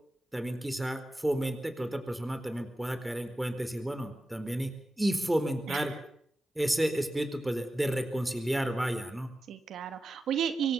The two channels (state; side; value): normal; both; correlation 0.92